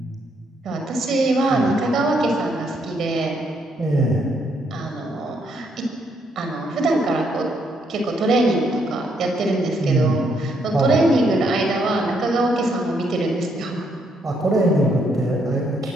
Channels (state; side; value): normal; both; correlation 0.73